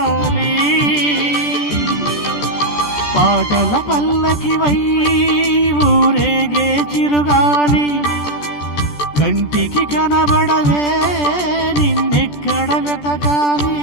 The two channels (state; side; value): late; right; 14 ms